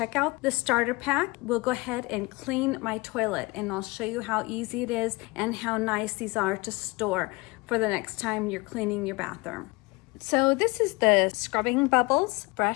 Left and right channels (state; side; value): quieter; right; 24.6 dB